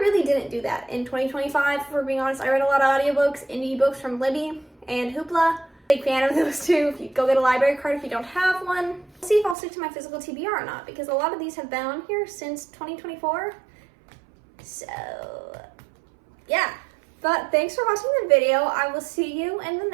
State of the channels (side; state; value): left; drops out; at 9.6 s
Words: really didn't do that in 2025, for being honest. I read a lot of audiobooks, indie books from Libby and Hoopla. Big fan of those two. If you go get a library card if you don't have one. See if I'll stick to my physical TBR or not, because a lot of these have been on here since 2024. So, yeah. But thanks for watching the video. I will see you in the